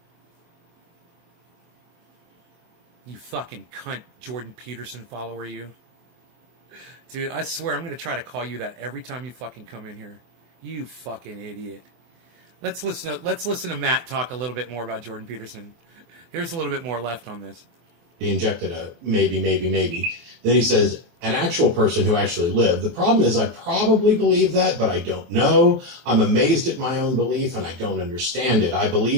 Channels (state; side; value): late; left; 24 ms